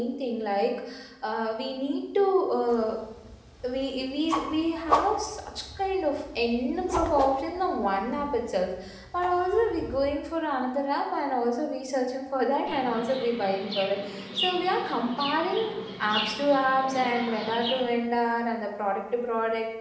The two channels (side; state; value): both; identical; correlation 1.00